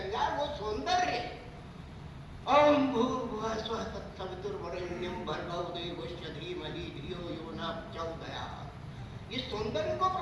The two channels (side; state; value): both; identical; correlation 1.00